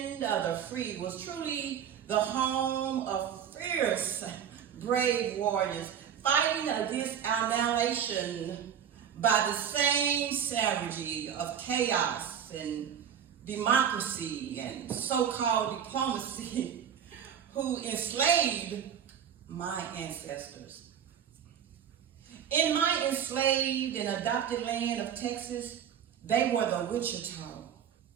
of the free was truly the home of fierce, brave warriors fighting against annihilation by the same savagery of chaos and democracy and so-called diplomacy who enslaved my ancestors. In my enslaved and adopted land of Texas, they were the Wichita,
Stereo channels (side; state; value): left; quieter; 8.6 dB